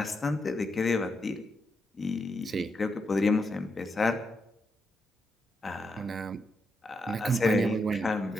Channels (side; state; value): both; normal; correlation 0.82